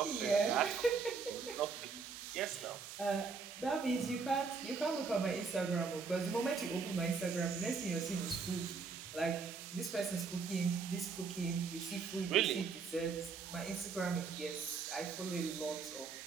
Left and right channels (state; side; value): quieter; left; 5.0 dB